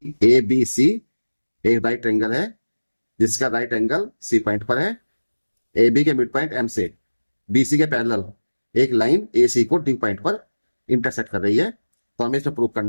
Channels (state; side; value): inverted; both; correlation -1.00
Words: A B C एक right angle है जिसका राइट एंगल सी पॉइंट पर है। ए बी के मिड पॉइंट एम से बी सी के पैरेलल एक लाइन ए सी को डी पॉइंट पर इंटरसेक्ट कर रही है। तो हमें इसमें प्रूव